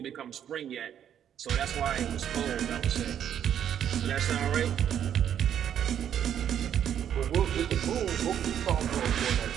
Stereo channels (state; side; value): quieter; left; 9.5 dB